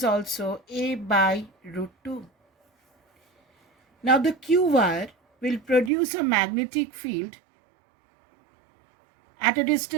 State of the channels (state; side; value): drops out; left; at 5.9 s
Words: also A by root 2. Now the Q wire will produce a magnetic field at a